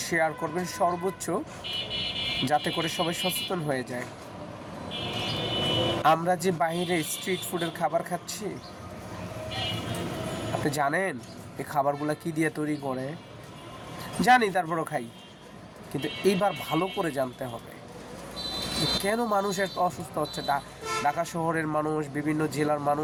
শেয়ার করবেন সর্বোচ্চ, যাতে করে সবাই সচেতন হয়ে যায়। আমরা যে বাইরে স্ট্রিট ফুডের খাবার খাচ্ছি, আপনি জানেন এই খাবারগুলো কী দিয়ে তৈরি করে? জানি, তারপরও খাই। কিন্তু এইবার ভালো করে জানতে হবে কেন মানুষ এত অসুস্থ হচ্ছে। ঢাকা শহরের মানুষ, বিভিন্ন জেলার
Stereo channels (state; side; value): identical; both; correlation 1.00